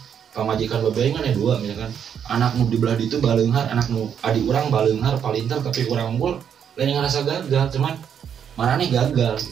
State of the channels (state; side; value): quieter; left; 8.2 dB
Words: pamajikan babe aing kan ada dua misalkan anak nu di belah ditu baleunghar anak nu adik urang baleunghar palintar tapi urang unggul lain ngarasa gagal cuman manane gagal